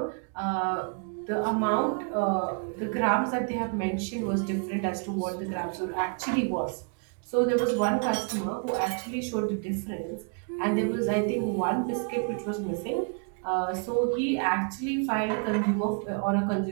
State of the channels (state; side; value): quieter; left; 39.7 dB